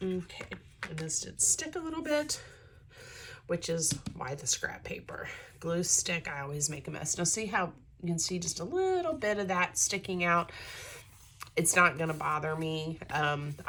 Okay, and this did stick a little bit, which is why the scrap paper. Glue stick, I always make a mess. Now see how you can see just a little bit of that sticking out? It's not gonna bother me.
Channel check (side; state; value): both; identical; correlation 1.00